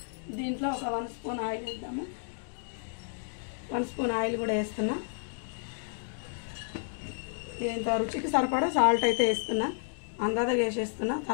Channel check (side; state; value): right; silent; digital silence